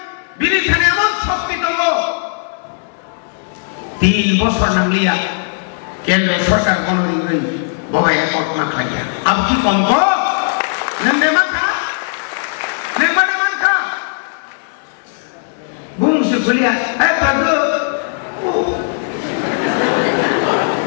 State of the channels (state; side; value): silent; right; digital silence